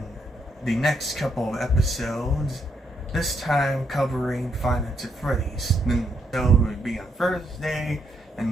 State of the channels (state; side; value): normal; both; correlation 0.76